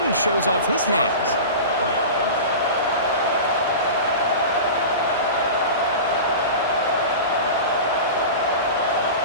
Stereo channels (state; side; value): inverted; both; correlation -0.31